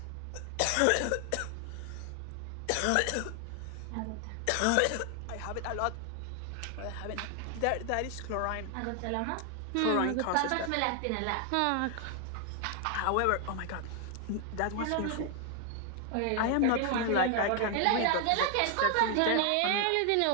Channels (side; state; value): both; different; correlation 0.00